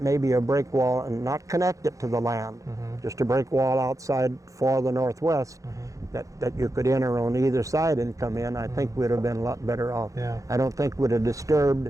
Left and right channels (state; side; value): late; left; 0.16 ms